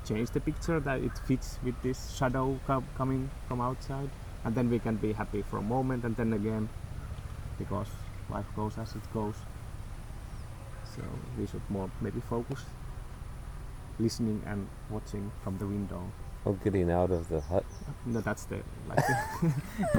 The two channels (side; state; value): both; identical; correlation 1.00